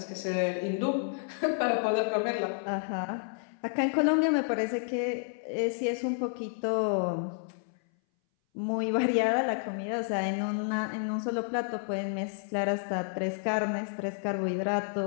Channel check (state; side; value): silent; right; 58 dB below the other